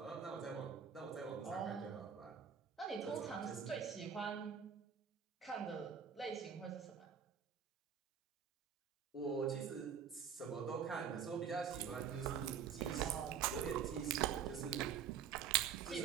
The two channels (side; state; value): left; quieter; 7.6 dB